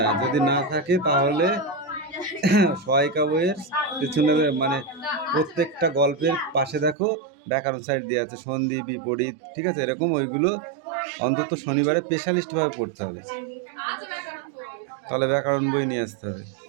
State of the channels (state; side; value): drops out; left; at 7.0 s